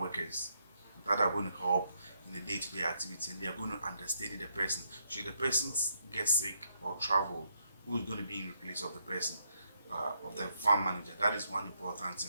that are going to help in the day-to-day activity, and they are going to understudy the person. Should the person get sick or travel, who is going to be in place of the person, of the farm manager? That is one important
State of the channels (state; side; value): inverted; both; correlation -0.76